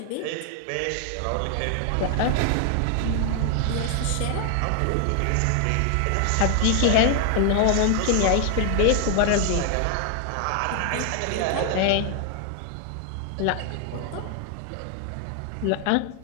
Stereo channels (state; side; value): different; both; correlation 0.00